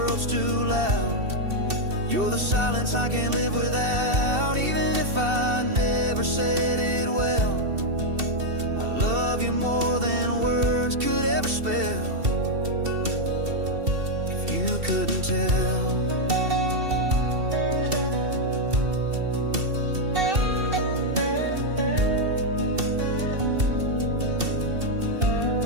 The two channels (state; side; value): late; left; 2.7 ms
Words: too loud. You're the silence I can't live without, even if I never said it well. I love you more than words could ever spell. If you couldn't tell.